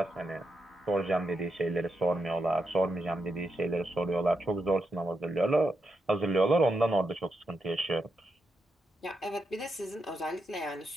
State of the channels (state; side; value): normal; both; correlation 0.84